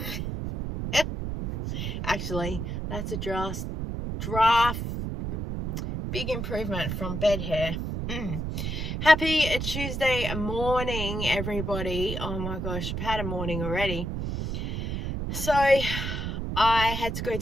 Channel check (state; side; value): noise; right; rumble, 3 dB below the sound